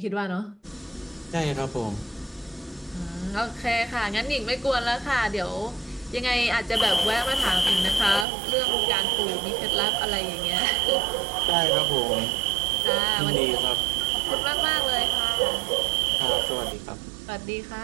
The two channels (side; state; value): left; drops out; at 8.2 s